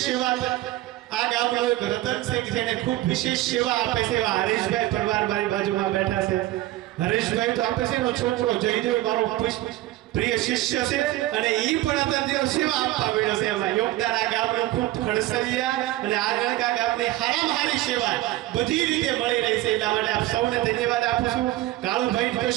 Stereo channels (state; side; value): quieter; left; 16.3 dB